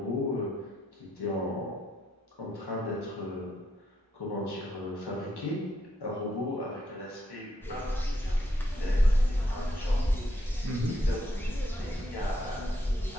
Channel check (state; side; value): normal; both; correlation 0.77